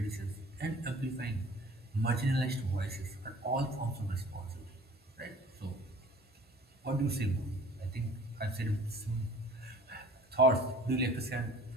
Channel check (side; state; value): both; normal; correlation 0.48